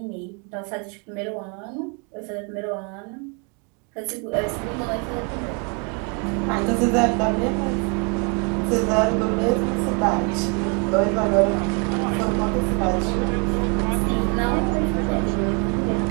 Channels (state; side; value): quieter; left; 34.1 dB